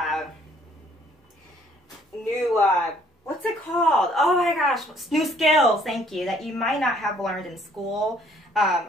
what's it called? Oh my gosh, new skills, thank you, that you might not have learned in school.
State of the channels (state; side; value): normal; both; correlation 0.62